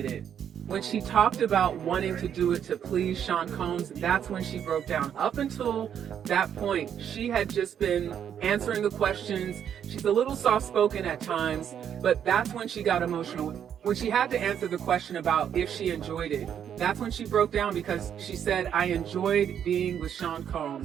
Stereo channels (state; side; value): quieter; left; 8.9 dB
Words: it. When she talked about wanting to do it to please Sean Combs, that's when she broke down. Up until that point, she had just been answering the questions. She's a little soft-spoken at times, but that's when she got emotional. When she had to answer the question about if she enjoyed it, that's when she broke down, because she said, I enjoyed being with Sean